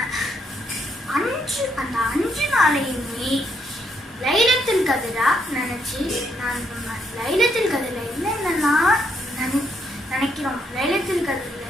அந்த 5 நாளையுமே லைலத்துல் கத்ரா நினைச்சு நம்ம லைலத்துல் கத்ர்ல என்னென்னலாம் நினைக்கிறோம், லைலத்துல் கத்ர்ல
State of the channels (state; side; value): normal; both; correlation 0.75